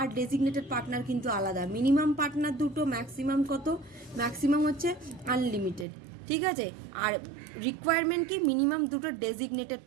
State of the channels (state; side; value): drops out; left; at 5.9 s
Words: ডেজিগনেটেড পার্টনার কিন্তু আলাদা। মিনিমাম পার্টনার 2টো, ম্যাক্সিমাম কত? ম্যাক্সিমাম হচ্ছে আনলিমিটেড, ঠিক আছে? আর রিকোয়ারমেন্ট কি? মিনিমাম 2টো ডেজিগনেটেড